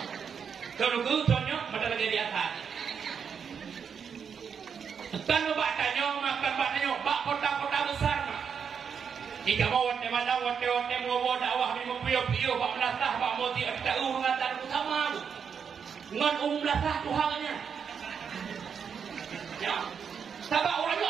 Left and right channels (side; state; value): left; quieter; 6.9 dB